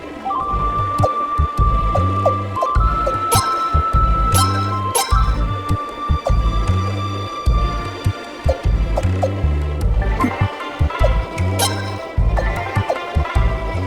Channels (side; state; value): both; identical; correlation 1.00